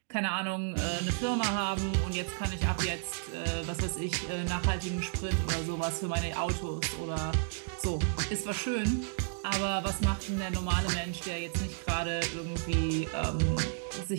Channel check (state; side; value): silent; left; digital silence